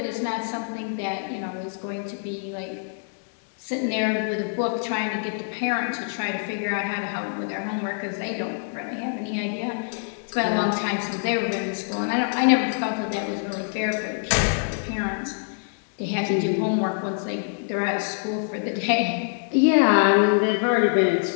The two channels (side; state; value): right; silent; digital silence